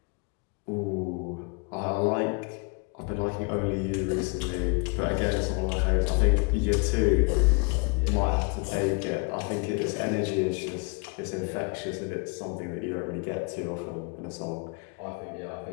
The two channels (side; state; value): right; quieter; 33.3 dB